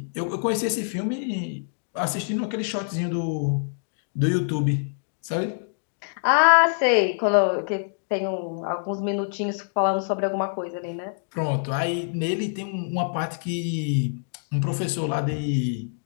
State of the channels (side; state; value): right; silent; digital silence